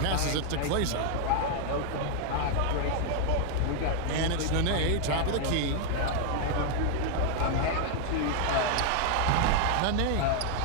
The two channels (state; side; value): different; both; correlation 0.00